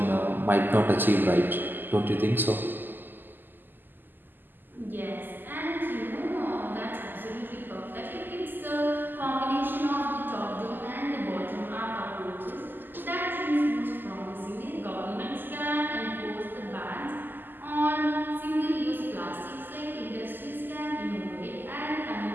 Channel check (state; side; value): late; left; 0.091 ms